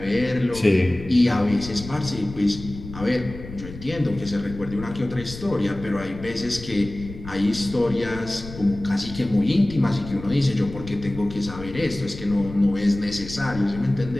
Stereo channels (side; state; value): left; noise; rumble, 13 dB below the sound